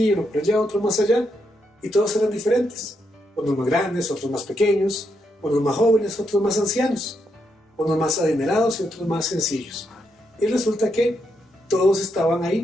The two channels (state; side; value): normal; both; correlation 0.80